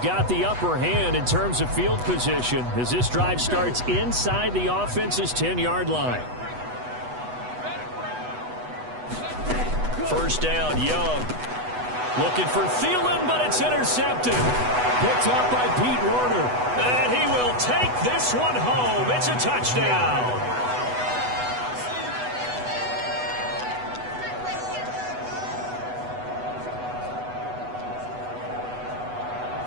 got the upper hand in terms of field position as this drive starts inside the offense's 10-yard line. First down, Young. Looking for Thielen, but it's intercepted. Picked up by Pete Werner. And he will take this one home. It's a touchdown.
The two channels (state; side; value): late; left; 8.1 ms